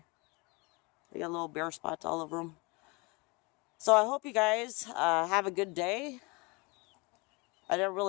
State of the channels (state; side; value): quieter; right; 27.7 dB